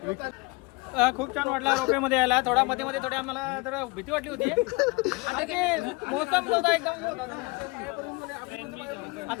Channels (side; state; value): right; quieter; 26.5 dB